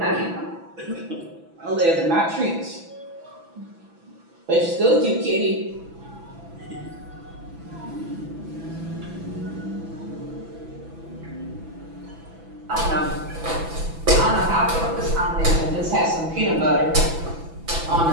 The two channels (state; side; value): late; left; 6.0 ms